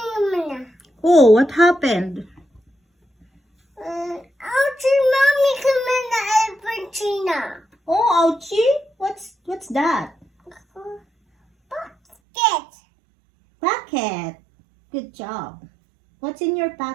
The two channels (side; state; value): left; drops out; at 12.2 s